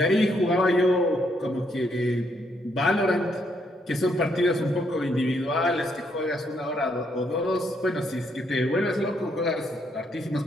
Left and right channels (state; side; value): normal; both; correlation 0.74